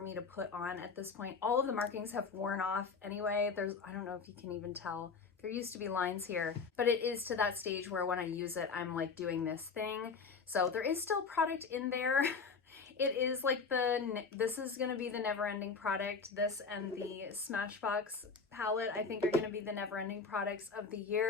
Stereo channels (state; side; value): quieter; right; 5.0 dB